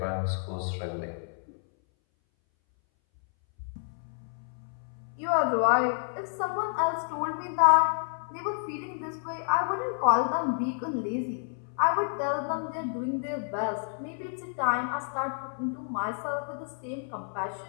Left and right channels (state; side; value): silent; right; 58 dB below the other